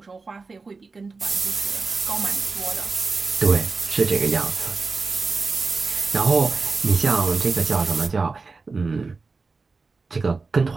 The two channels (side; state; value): left; quieter; 4.2 dB